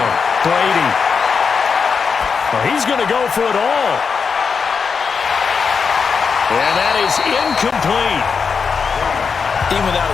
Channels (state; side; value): quieter; right; 5.7 dB